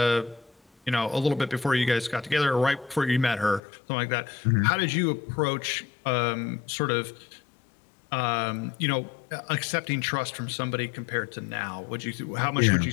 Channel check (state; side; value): drops out; right; at 3.6 s